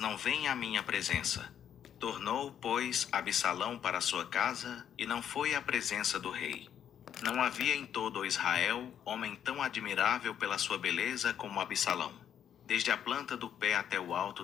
venha à minha presença. Tornou, pois, Absalão para sua casa, e não foi à presença do rei. Não havia em todo Israel homem tão admirável pela sua beleza como Absalão. Desde a planta do pé até o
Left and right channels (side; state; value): right; quieter; 9.3 dB